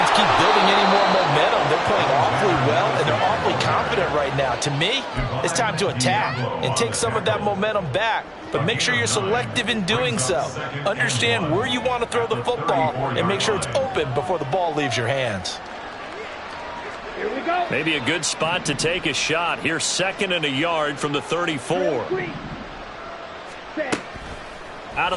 keep building any more momentum. They're playing awfully well, and they're awfully confident right now. To me, it's time to attack and take some of that momentum back. But make sure you're selective in doing so. Understand where you want to throw the football and make sure it's open before the ball leaves your hands. Here we go. Maybe a good spot to take a shot. Here's 2nd and a yard from the 34. 3, 6. Out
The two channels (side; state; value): both; identical; correlation 1.00